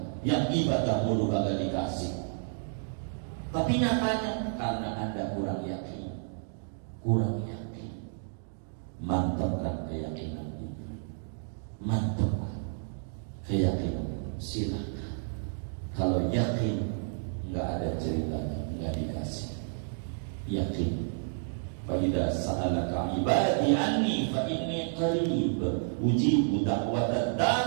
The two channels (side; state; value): left; silent; digital silence